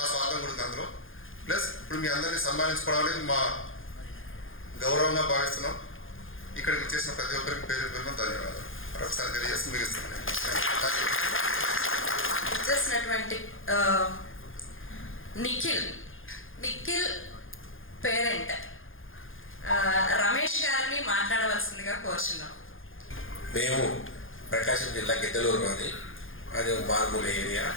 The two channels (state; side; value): late; right; 0.59 ms